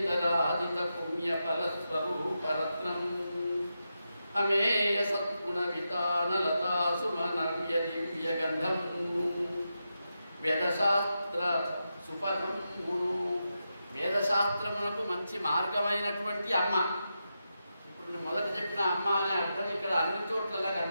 పుణ్య ఫలస్వరూపరత్నం అమేయ సద్గుణ వితానలతా సుమనవ్య దివ్య గంధం వేదశాస్త్ర సుపథమును వేదశాస్త్రమునకు మంచి మార్గమైనటువంటి అమ్మ. ఇప్పుడు మొదట చెప్పిన అమ్మ అనే అర్థం ఇక్కడ అన్ని చోట్లలా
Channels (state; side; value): inverted; both; correlation -0.88